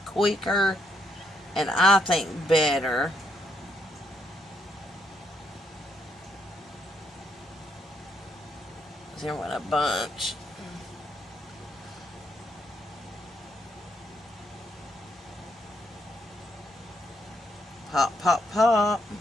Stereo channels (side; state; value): both; normal; correlation 0.76